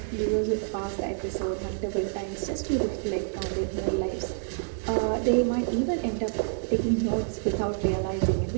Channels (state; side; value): silent; left; digital silence